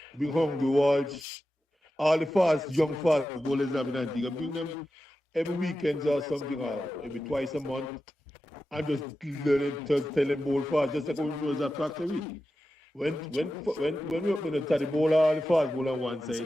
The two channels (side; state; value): both; normal; correlation 0.92